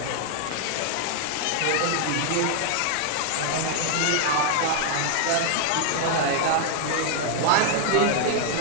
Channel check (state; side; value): different; both; correlation 0.00